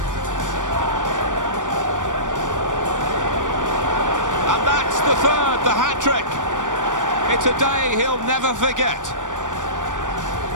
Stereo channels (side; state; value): left; late; 0.87 ms